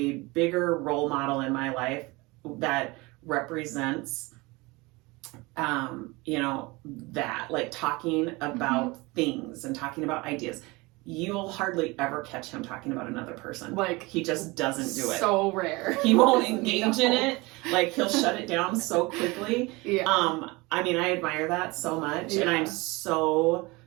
bigger role model in my life that represents, that, like talking about things and talking about ideas. You'll hardly ever catch him talking about another person. Like, he just doesn't do it. So rare. He won't engage in it. Like, he'll shut it down so quickly. I mean, I admire that so much. And I'm so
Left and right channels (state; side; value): quieter; left; 23.9 dB